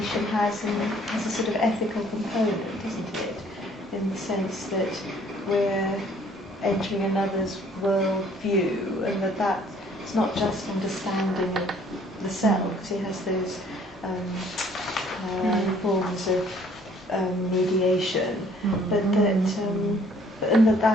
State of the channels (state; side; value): normal; both; correlation 0.59